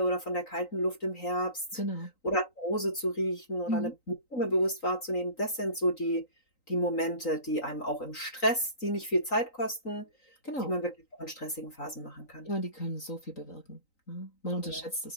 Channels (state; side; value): late; right; 3.9 ms